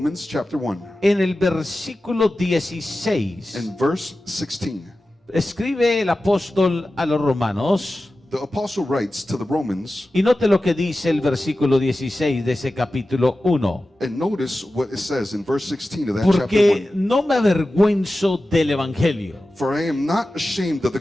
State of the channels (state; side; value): normal; both; correlation 0.94